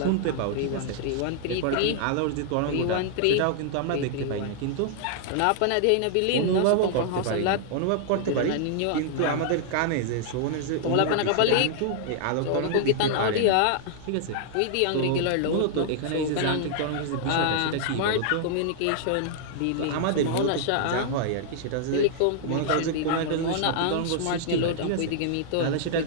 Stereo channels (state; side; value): different; both; correlation -0.01